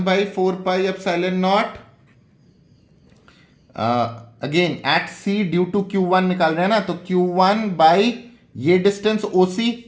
epsilon naught, again at C due to Q one निकाल रहे हैं ना, तो क्यू वन बाई ये डिस्टेंस ओ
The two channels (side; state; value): both; identical; correlation 1.00